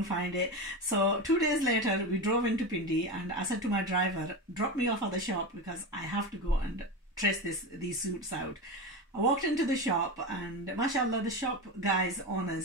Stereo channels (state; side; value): normal; both; correlation 0.21